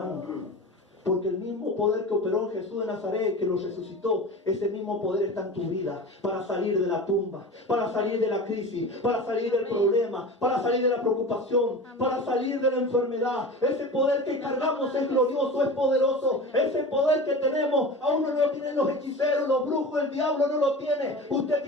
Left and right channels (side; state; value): both; normal; correlation 0.33